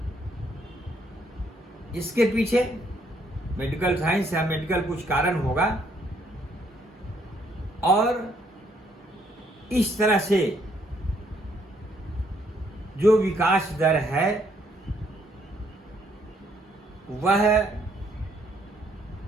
इसके पीछे मेडिकल साइंस या मेडिकल कुछ कारण होगा और इस तरह से जो विकास दर है वह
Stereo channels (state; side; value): normal; both; correlation 0.69